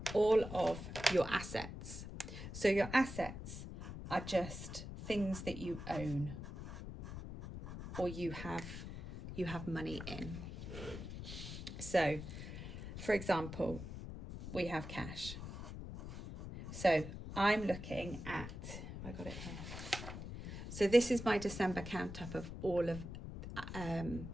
all of your assets. So your assets are just things that you own or you have money in. So for example, we have cash. So I'm looking at, I got it here. So this is my December count up of all of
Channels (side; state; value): left; noise; rumble, 8 dB below the sound